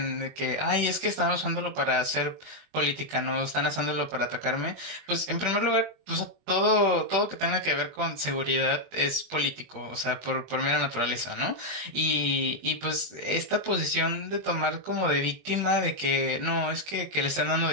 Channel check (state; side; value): late; left; 21 ms